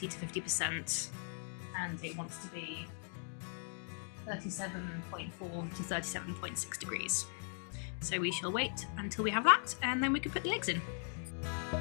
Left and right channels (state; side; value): silent; right; 52 dB below the other